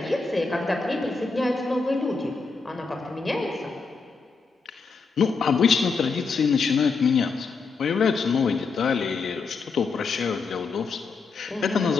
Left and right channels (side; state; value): right; quieter; 4.6 dB